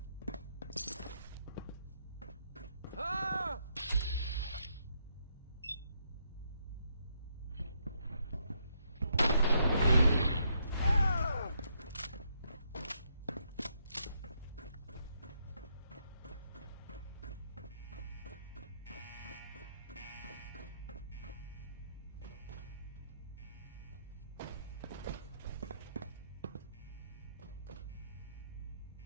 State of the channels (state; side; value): inverted; both; correlation -0.76